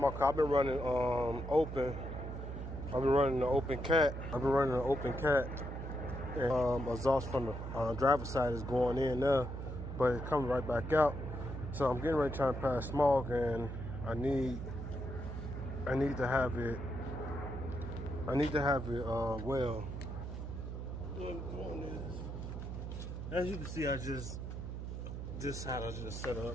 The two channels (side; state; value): right; noise; hum, 6 dB below the sound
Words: I've been running open. I've been running the open cat. And exhaust from the driver's side is going in there, but it's coming right back out. So I'm getting ready trying to pass smog, and I need to have it. Well. What I'm doing is, as you can see, this side I just set